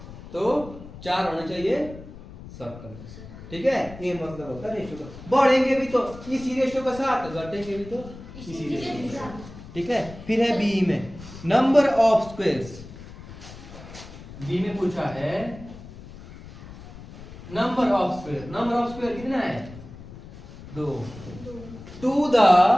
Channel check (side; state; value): left; noise; rumble, 16 dB below the sound